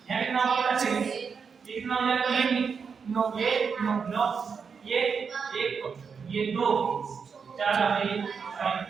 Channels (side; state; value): left; quieter; 5.9 dB